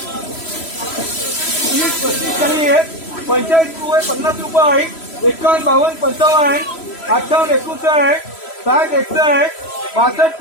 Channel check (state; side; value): late; right; 3.0 ms